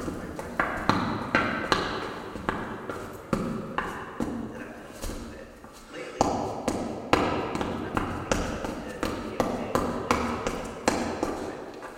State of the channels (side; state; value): both; identical; correlation 1.00